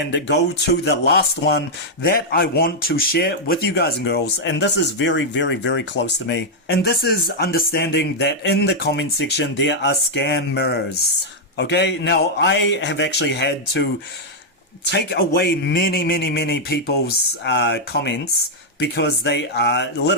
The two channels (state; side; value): normal; both; correlation -0.03